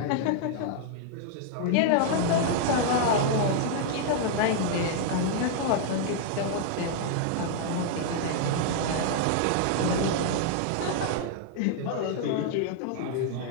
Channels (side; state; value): both; different; correlation -0.01